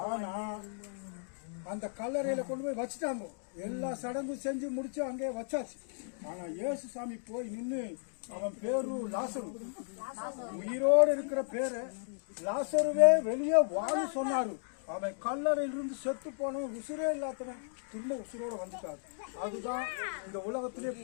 ஆனா அந்த கல்லறையில கொண்டு போய் வச்சுட்டாங்க. எல்லா சடங்கும் செஞ்சு முடிச்சு அங்கே வச்சாச்சு. ஆனா இயேசு சாமி போய் நின்று அவன் பேரு லாசரு, உயிரோடு இருக்கிற பேரை லாசருவே வெளியே வாழு சொன்னாரு. அவன் கல்லறையிலிருந்து செத்து போனவன் உசுரே இல்லாதவன் திரும்ப உசுரோட வந்துட்டாரு. அதுதான் இந்த உலகத்திலே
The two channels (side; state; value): right; silent; digital silence